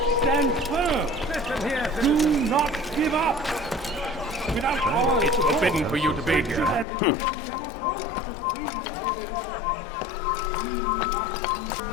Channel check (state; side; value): drops out; right; at 6.9 s